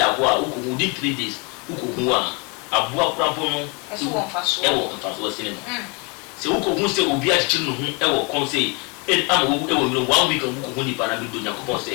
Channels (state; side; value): quieter; right; 31.8 dB